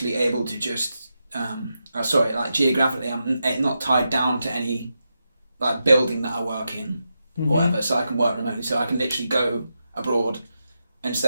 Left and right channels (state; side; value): inverted; both; correlation -0.87